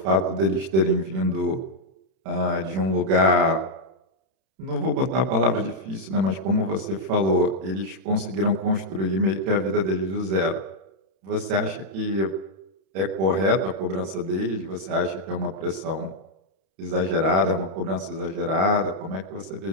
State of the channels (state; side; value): late; left; 31 ms